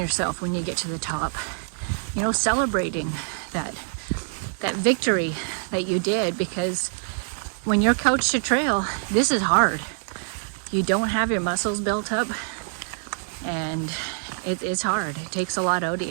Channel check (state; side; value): silent; left; digital silence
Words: when you get to the top. You know, celebrating that victory that you did, because when you're coach to trail, this is hard. You don't have your muscles built up, and it's hard. It takes a lot out of